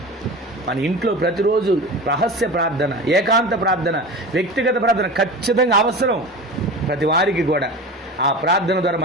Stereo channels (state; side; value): normal; both; correlation 0.31